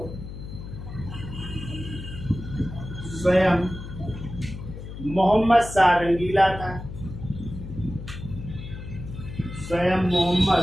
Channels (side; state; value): left; noise; hum, 10 dB below the sound